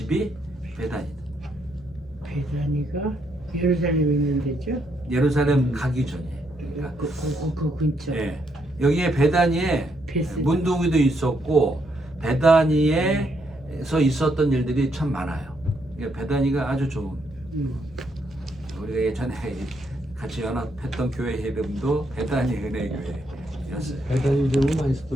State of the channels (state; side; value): normal; both; correlation 0.75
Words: 베다니다. 베다니가 예루살렘에 있는 데죠? 예루살렘 가기 전에. 그러니까 그 근처. 예. 여기에 베다니에 베스. 문둥이도 있었고 베다니에서 있었던 일들이 참 많아요. 그러니까 베다니가 아주 좋은. 우리가 예전에 같이 연합했던 교회 이름도 베다니 은혜교회였어요. 배단이 이름을 많이